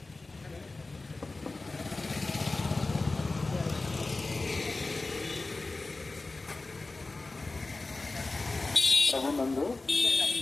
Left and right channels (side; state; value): right; quieter; 3.4 dB